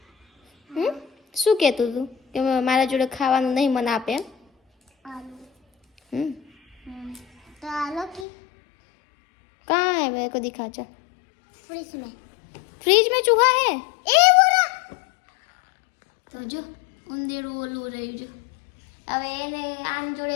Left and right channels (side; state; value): right; drops out; at 8.2 s